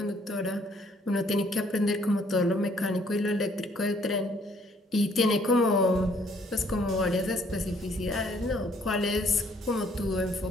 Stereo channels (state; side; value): normal; both; correlation 0.63